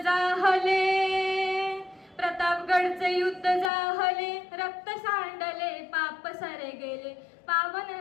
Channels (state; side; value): drops out; right; at 3.7 s